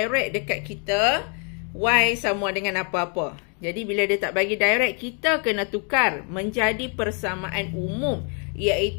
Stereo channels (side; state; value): right; quieter; 38.9 dB